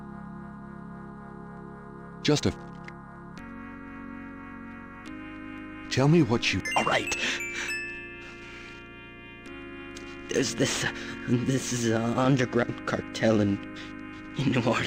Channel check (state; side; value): identical; both; correlation 1.00